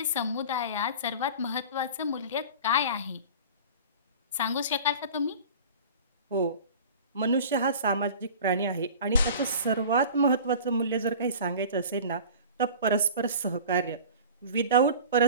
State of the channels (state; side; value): inverted; both; correlation -0.39